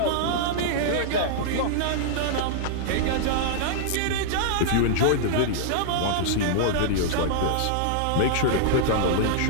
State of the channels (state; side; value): different; both; correlation -0.01